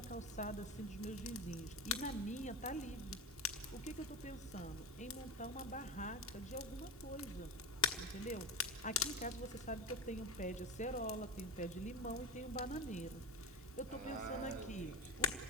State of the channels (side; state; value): both; normal; correlation 0.19